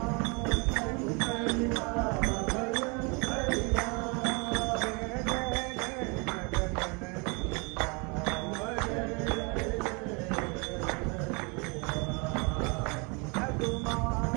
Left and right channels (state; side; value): quieter; left; 31.0 dB